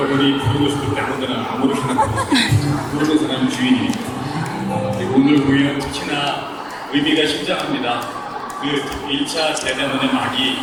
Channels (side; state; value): both; identical; correlation 1.00